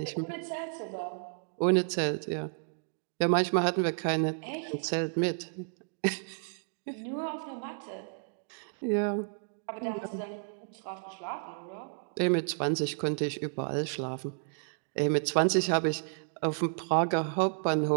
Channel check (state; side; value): silent; left; digital silence